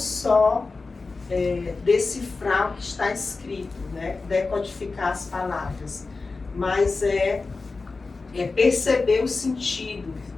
decifrar o que está escrito, né? Decodificar as palavras, mas perceber o sentido,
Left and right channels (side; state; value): right; quieter; 3.9 dB